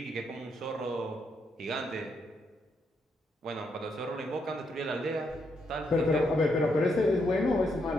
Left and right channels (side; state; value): both; normal; correlation 0.78